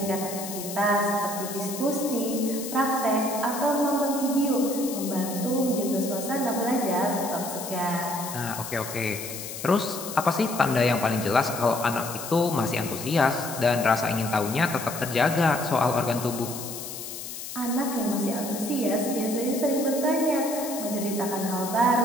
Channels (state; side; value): noise; left; hiss, 9 dB below the sound